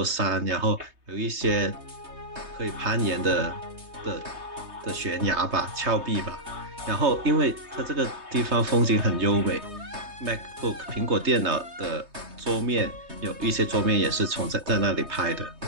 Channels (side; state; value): left; late; 3.2 ms